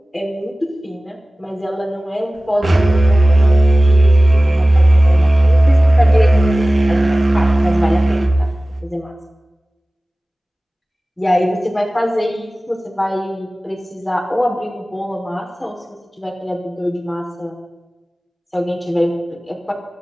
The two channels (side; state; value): both; normal; correlation 0.97